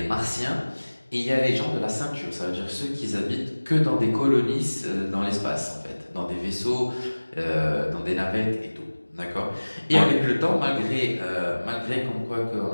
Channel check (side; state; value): both; inverted; correlation -1.00